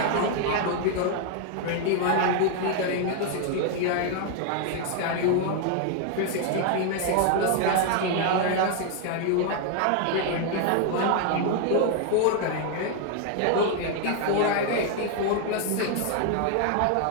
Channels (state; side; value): different; both; correlation 0.00